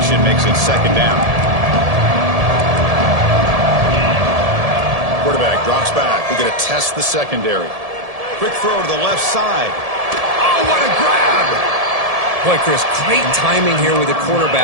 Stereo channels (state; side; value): late; left; 1.7 ms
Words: makes it second down. Quarterback drops back. We're going to test the secondary. Quick throw to the left side. Oh, what a grab! Boy, Chris, great timing here with the